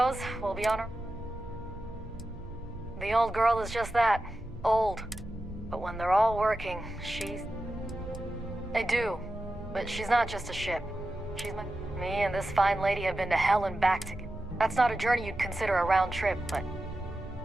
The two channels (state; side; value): noise; right; hum, 17 dB below the sound